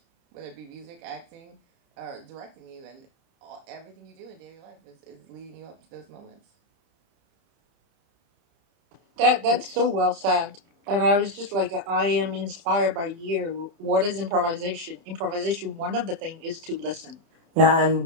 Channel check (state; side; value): late; left; 30 ms